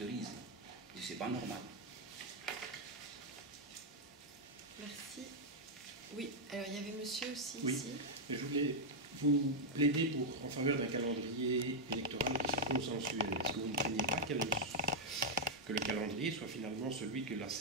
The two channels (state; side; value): normal; both; correlation -0.03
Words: Ce n'est pas normal. Merci. Oui, alors il y avait monsieur aussi Oui, ici. je voulais vous plaider en faveur d'un calendrier électoral qui soit consensuel. Est-ce que vous ne craignez pas que le calendrier soit finalement celui que la